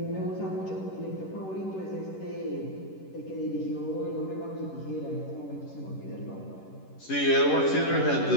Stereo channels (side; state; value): right; late; 11 ms